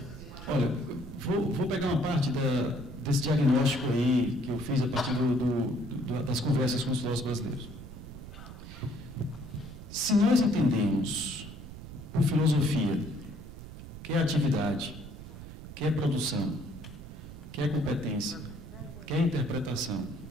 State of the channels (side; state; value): right; noise; rumble, 13 dB below the sound